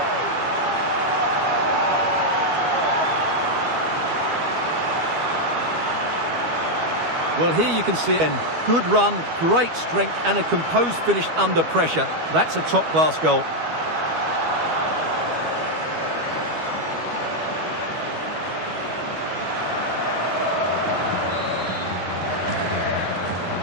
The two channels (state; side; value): late; left; 12 ms